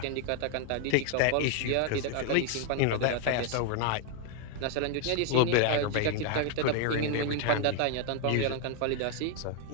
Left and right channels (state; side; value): different; both; correlation 0.01